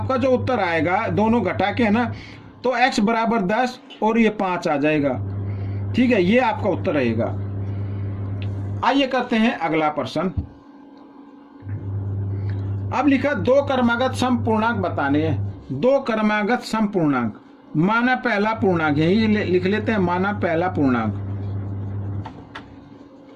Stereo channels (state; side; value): identical; both; correlation 1.00